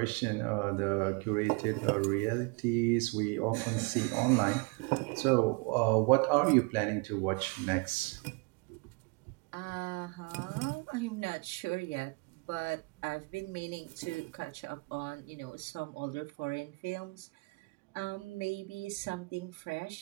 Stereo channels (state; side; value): quieter; left; 30.3 dB